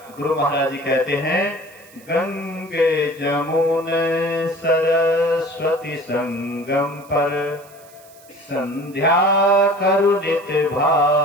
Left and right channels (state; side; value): noise; right; hiss, 25 dB below the sound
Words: गुरु महाराज जी कहते हैं, गंगे जमुने सरस्वती संगम पर संध्या करु नित